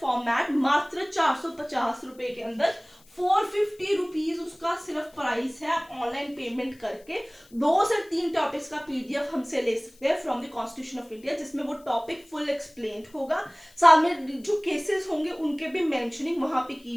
मात्र 450 रुपए के अंदर। 450 रुपीज उसका सिर्फ प्राइस है। आप ऑनलाइन पेमेंट करके 2 से 3 टॉपिक्स का पीडीएफ हमसे ले सकते हैं from the constitution of India, जिसमें वो टॉपिक फुल एक्सप्लेन होगा, साथ में जो केसेस होंगे उनके भी मेंशनिंग वहां पे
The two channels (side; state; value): left; noise; hiss, 28 dB below the sound